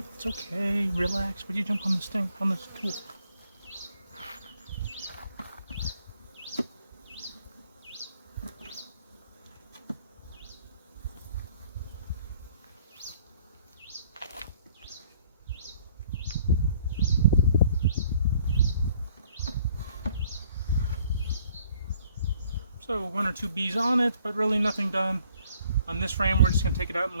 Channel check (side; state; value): both; inverted; correlation -0.61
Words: It's okay. Relax. Would you jump on this thing? On this tool? So 1 or 2 bees on it, but really nothing done. On this frame, we're just going to take it out and